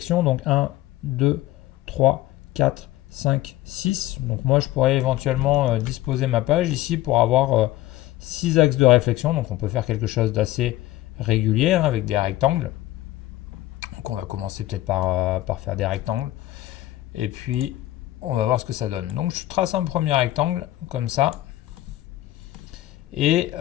Donc 1, 2, 3, 4, 5, 6. Donc moi je pourrais éventuellement disposer ma page ici pour avoir 6 axes de réflexion. Donc on peut faire quelque chose d'assez régulier hein, avec des rectangles. Donc on va commencer peut-être par faire des rectangles. Et puis on va voir ce que ça donne. Donc je trace un premier rectangle comme ça. Et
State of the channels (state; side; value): quieter; right; 15.9 dB